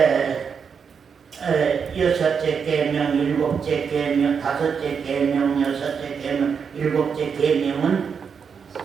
여섯째 계명, 일곱째 계명, 다섯째 계명, 여섯째 계명, 일곱째 계명은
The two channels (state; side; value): quieter; left; 6.4 dB